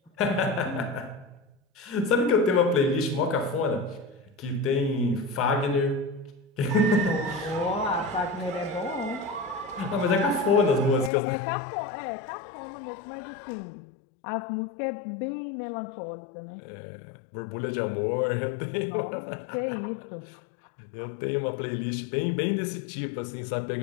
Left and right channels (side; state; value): right; drops out; at 11.1 s